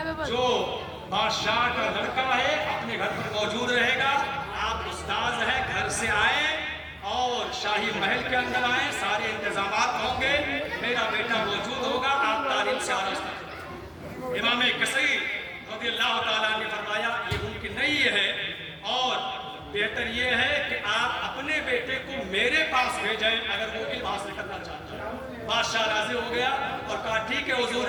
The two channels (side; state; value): both; identical; correlation 1.00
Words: جو بادشاہ کا لڑکا ہے اپنے گھر پر موجود رہے گا. آپ استاذ ہیں, گھر سے آئیں اور شاہی محل کے اندر آئیں, سارے انتظامات ہوں گے, میرا بیٹا موجود ہوگا, آپ تعلیم سے آراستہ کریں. امام کثیر رضی اللہ تعالیٰ نے فرمایا یہ ممکن نہیں ہے اور بہتر یہ ہے کہ آپ اپنے بیٹے کو میرے پاس بھیجیں اگر وہ علم حاصل کرنا چاہتا ہے. بادشاہ راضی ہو گیا اور کہا ٹھیک ہے حضور,